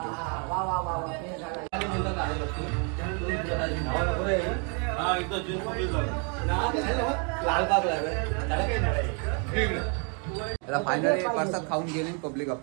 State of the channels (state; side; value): quieter; left; 37.1 dB